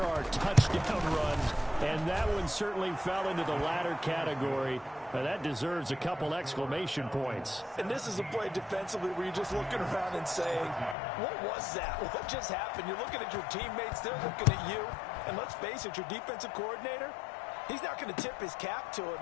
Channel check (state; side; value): drops out; right; at 11.0 s